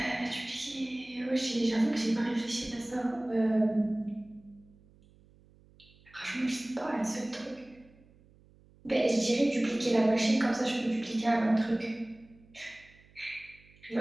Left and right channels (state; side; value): noise; right; hum, 28 dB below the sound